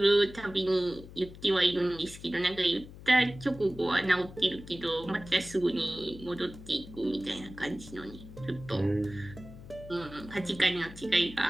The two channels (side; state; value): left; noise; hum, 16 dB below the sound